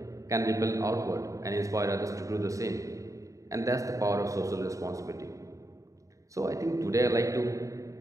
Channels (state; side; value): late; left; 0.16 ms